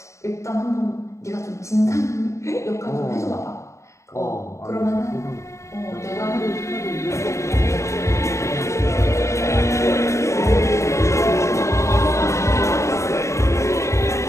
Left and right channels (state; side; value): late; right; 0.14 ms